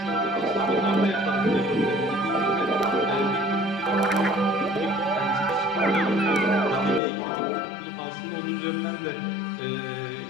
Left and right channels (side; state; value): right; drops out; at 7.0 s